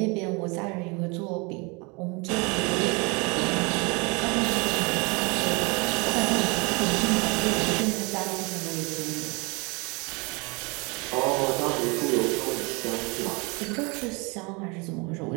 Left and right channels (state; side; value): quieter; left; 29.3 dB